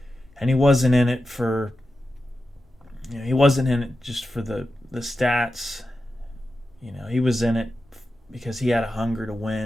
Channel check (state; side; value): normal; both; correlation 0.91